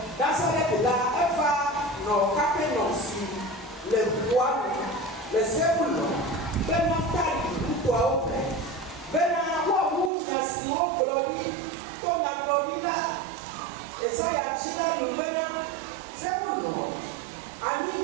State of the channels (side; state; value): left; drops out; at 10.1 s